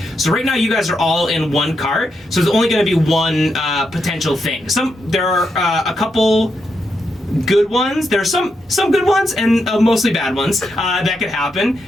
So right now you guys are all in one cart, so there's only going to be one potential thing. There are a couple good ones. There are some good ones and mostly bad ones that could happen.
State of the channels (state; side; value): normal; both; correlation 0.83